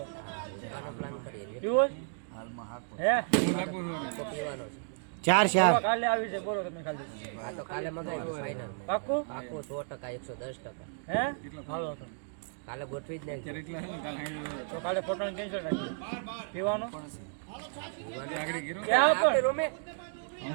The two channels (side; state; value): left; silent; digital silence